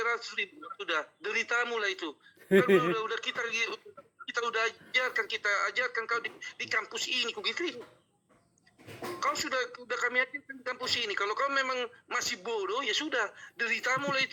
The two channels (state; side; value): identical; both; correlation 1.00